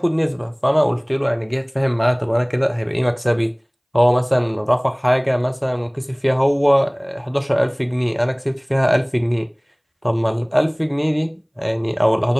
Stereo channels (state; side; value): identical; both; correlation 1.00